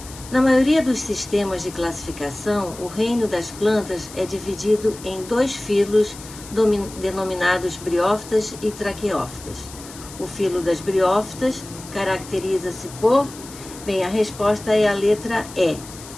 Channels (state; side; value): noise; left; hiss, 16 dB below the sound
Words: Na maioria dos sistemas de classificação, o reino das plantas é dividido em dois filos denominados briófitas e traqueófitas. O filo das briófitas caracteriza-se por... Bem, a resposta é a letra E.